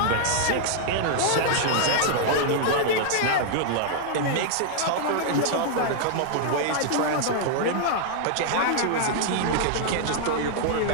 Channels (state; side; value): different; both; correlation -0.01